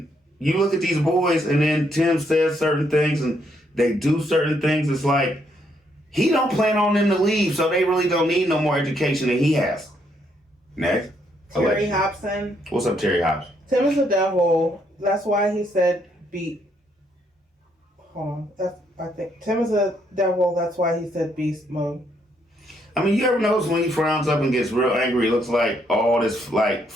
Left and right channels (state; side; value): normal; both; correlation 0.73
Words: you look at these boys and then Tim says certain things and they do certain things, it's like he don't plan on them to leave, so they really don't need no more education than he has. Next. Terry Hobson. What's up, Terry Hobson? Tim is a devil. That's why he said beat. Hold on. I think Tim is a devil. That's why he said beast mode. I mean, you ever notice when he frowns up and gets real angry, it looks like all this like